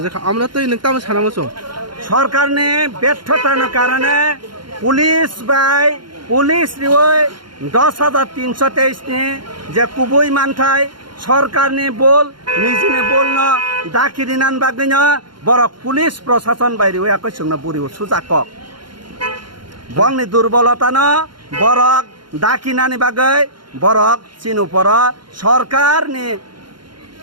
জাখা আমরা তৈ নংতাম সানামসং সরকারনি ব্যর্থতার কারণে পুলিশ রিওই 10,323 ni যে কুবই মানথাই সরকারনি বল নিজনে বলন দাকিরিনান বাগৈন বরক পুলিশ প্রশাসন বাইরে একই সঙ্গে বুড়ি সুজাকক বংনি দুর্বলতানো বরক দাকিনানি বাগৈ বরক চিনুপর সরকারনি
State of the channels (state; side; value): late; left; 0.72 ms